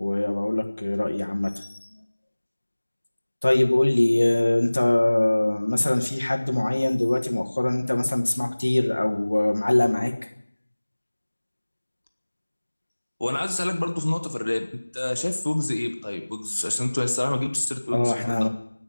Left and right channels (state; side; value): inverted; both; correlation -1.00